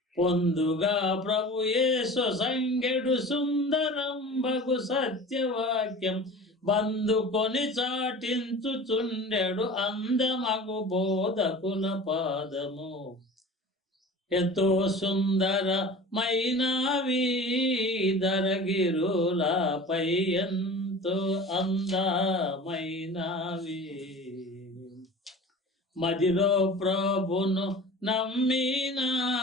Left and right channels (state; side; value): normal; both; correlation 0.39